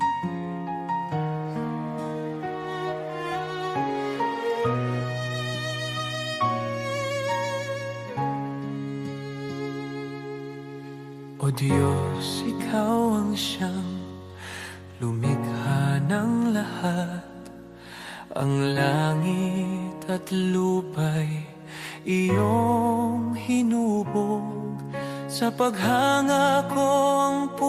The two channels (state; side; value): identical; both; correlation 1.00